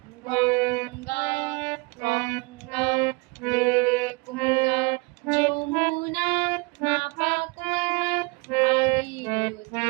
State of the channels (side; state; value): left; quieter; 28.2 dB